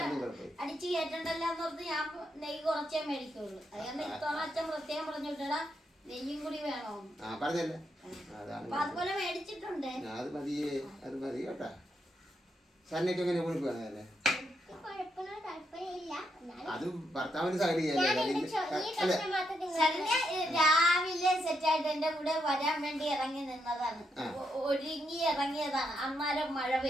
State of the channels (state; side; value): normal; both; correlation 0.80